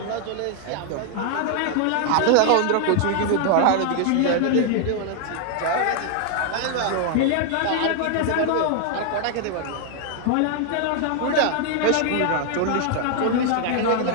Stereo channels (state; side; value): different; both; correlation 0.00